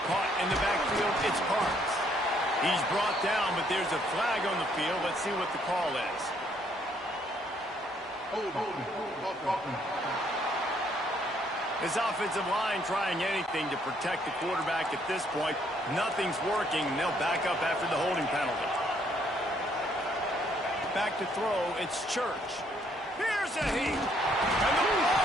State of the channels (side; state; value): both; normal; correlation 0.68